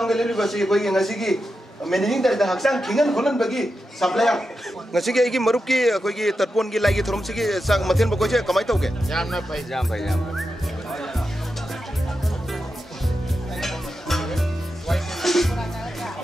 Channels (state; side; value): normal; both; correlation 0.89